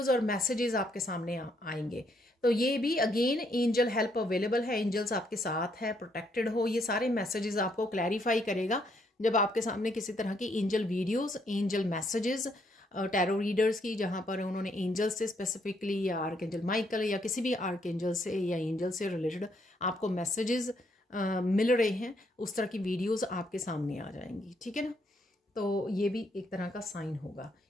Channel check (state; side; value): normal; both; correlation 0.73